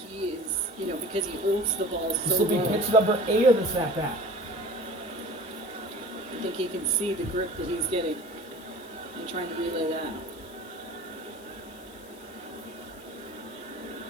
He is because he holds the ball This so will be low. pitch number 8 of this at-bat. I think he can see the grip that he's getting and trying to relay that.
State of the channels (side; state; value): left; noise; hiss, 23 dB below the sound